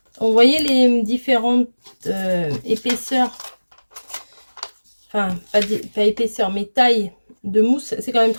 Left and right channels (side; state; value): both; inverted; correlation -1.00